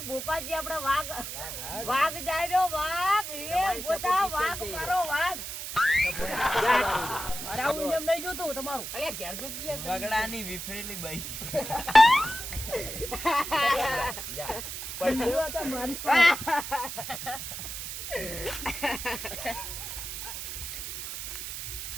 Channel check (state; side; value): noise; right; hiss, 7 dB below the sound